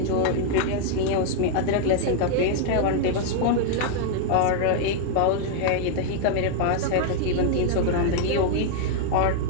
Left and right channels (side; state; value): both; different; correlation 0.00